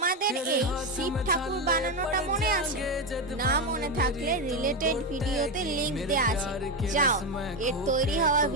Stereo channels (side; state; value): both; normal; correlation 0.11